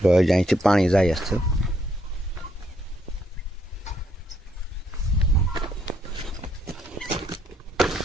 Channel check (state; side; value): normal; both; correlation 0.73